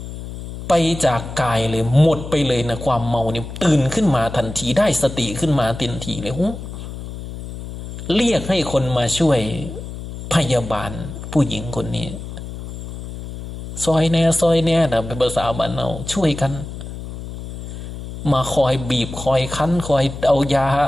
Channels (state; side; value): noise; left; hum, 10 dB below the sound